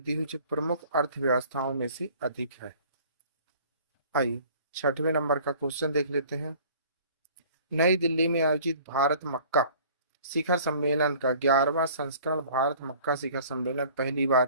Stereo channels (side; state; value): both; inverted; correlation -0.50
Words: हुई जो प्रमुख अर्थव्यवस्थाओं में से अधिक है। आइए 6वें नंबर का क्वेश्चन देख लेते हैं। नई दिल्ली में आयोजित भारत मक्का शिखर सम्मेलन का 11वां संस्करण भारत मक्का शिखर सम्मेलन पहली